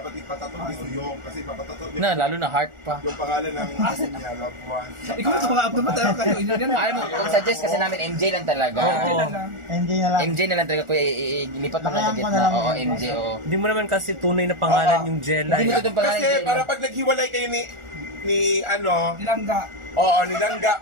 ipatato ni Uyong kasi papatato Na, lalo na heart pa. yung pangalan ng niya, loved one. Ikaw ito mga abdo ba talaga kayo? Yan na. Alam mo, kung suggest kasi namin MJ lang talaga. Oo. MJ na lang. MJ na lang talaga kuya, ilipat mo lang sa Lakayan ko gitna. na lang Oo, yun. MJ, oo. Hindi mo naman kasi tunay na pangalan Oo. yung Jella. Hindi mo itong pangalan Kasi Jella. para pag naghiwalay kayo ni ano, Nilangga. oo, nilangga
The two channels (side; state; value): left; late; 1.4 ms